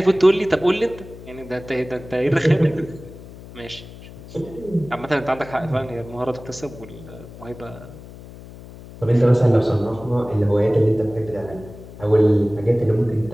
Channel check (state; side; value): noise; left; hum, 17 dB below the sound